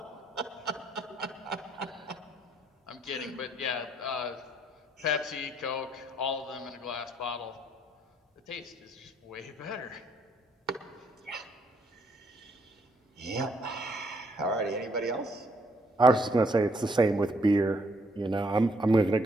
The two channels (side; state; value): both; normal; correlation 0.69